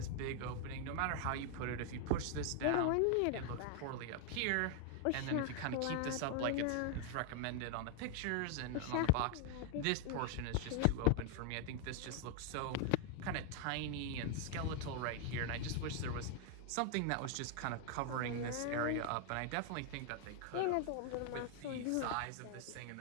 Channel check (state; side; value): different; both; correlation 0.00